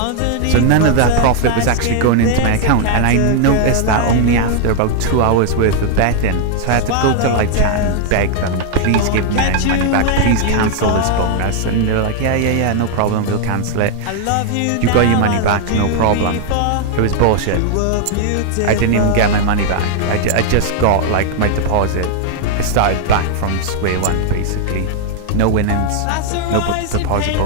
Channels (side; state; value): both; different; correlation 0.00